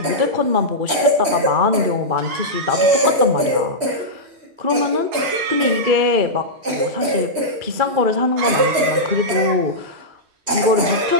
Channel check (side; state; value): left; late; 3.1 ms